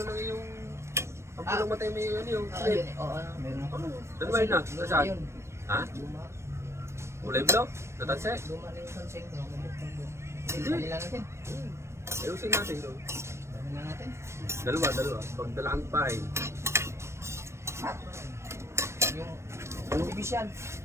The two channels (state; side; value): late; left; 0.13 ms